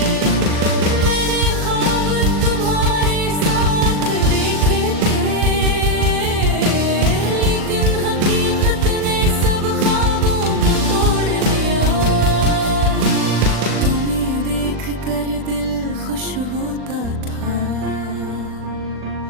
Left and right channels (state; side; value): late; left; 39 ms